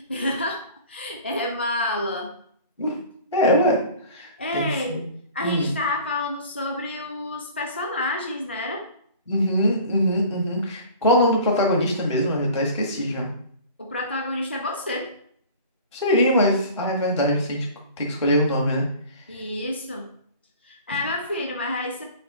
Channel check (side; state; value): both; inverted; correlation -0.44